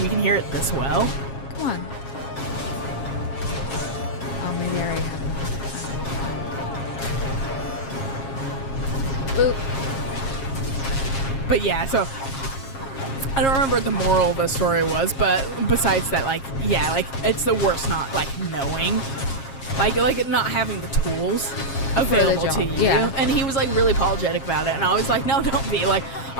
we can hear it this well. Come on. Oh, maybe I already have it. Boop. But yeah, so I don't remember what the moral of the story was, but besides that, like, yeah, like it's the worst not like knowing, like not having the tools available to you. Yeah. And he was like really apologetic about it, and I was like, no, don't be. Like,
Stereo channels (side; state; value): right; late; 7.4 ms